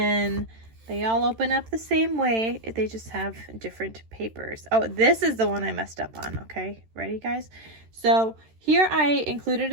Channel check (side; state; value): left; late; 13 ms